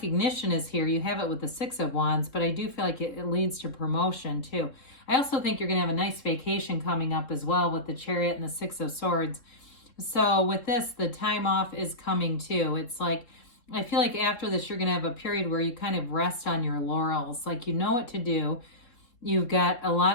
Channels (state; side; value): late; right; 3.7 ms